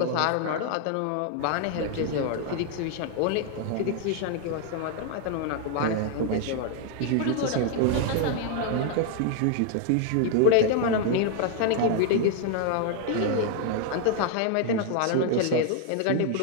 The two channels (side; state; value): both; different; correlation 0.00